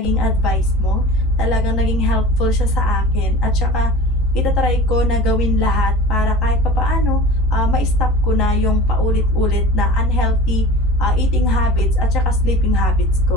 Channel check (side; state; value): both; normal; correlation 0.38